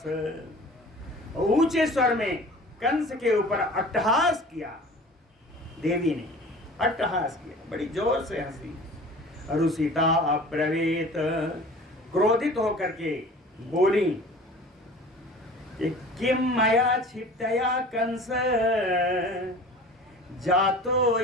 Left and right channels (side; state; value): both; normal; correlation 0.42